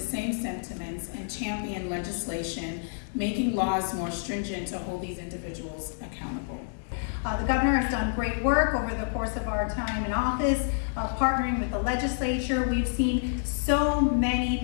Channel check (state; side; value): silent; right; digital silence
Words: same sentiments and championed legislation, making laws more stringent to hold these individuals accountable. The governor has done great work over the course of our time in office, partnering with the legislature. We've seen so many